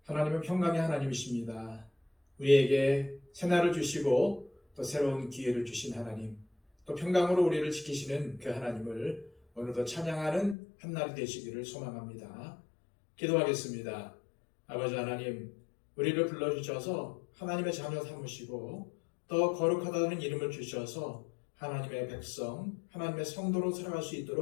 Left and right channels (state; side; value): drops out; right; at 10.6 s